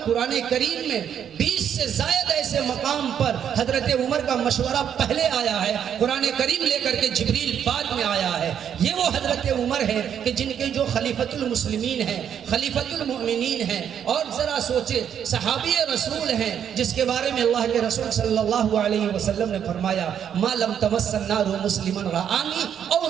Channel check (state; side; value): quieter; left; 8.8 dB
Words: کریم میں 20 سے زائد ایسے مقام پر حضرت عمر کا مشورہ پہلے آیا ہے، قرآن کریم لے کر کے جبریل بعد میں آیا ہے۔ یہ وہ حضرت عمر ہے کہ جن کے جو خلیفۃ المسلمین ہیں، خلیفۃ المؤمنین ہیں، اور ذرا سوچے صحابی رسول ہیں جس کے بارے میں اللہ کے رسول صلی اللہ علیہ وسلم نے فرمایا ما لم تمس النار مسلما رآنی او